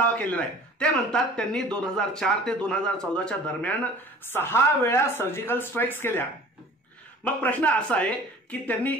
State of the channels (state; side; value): normal; both; correlation 0.45